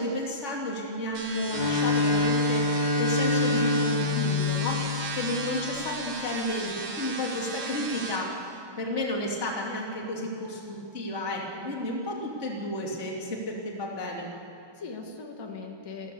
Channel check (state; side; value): late; left; 1.2 ms